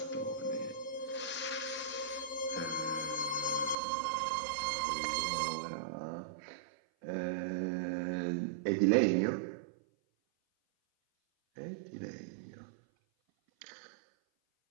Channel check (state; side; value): drops out; left; at 3.8 s